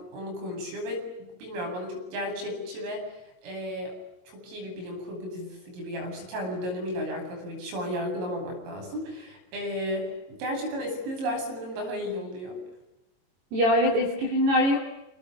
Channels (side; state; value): left; late; 22 ms